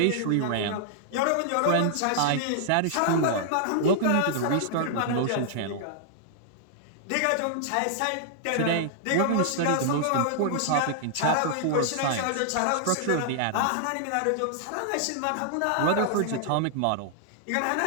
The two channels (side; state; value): both; different; correlation -0.01